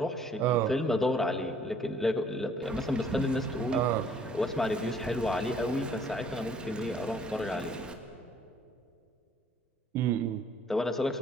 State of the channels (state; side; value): normal; both; correlation 0.60